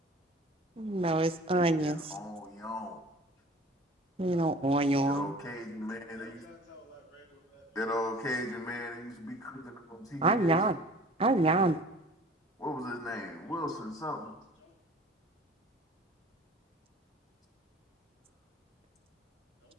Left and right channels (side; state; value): both; normal; correlation 0.46